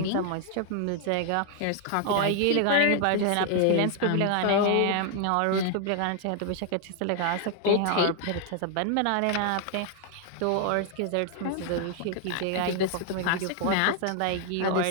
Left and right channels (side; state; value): both; different; correlation 0.00